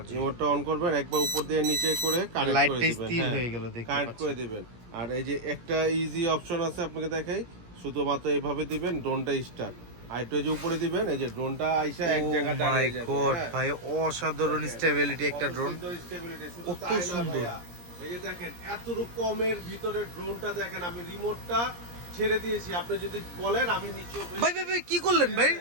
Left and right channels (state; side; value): late; left; 17 ms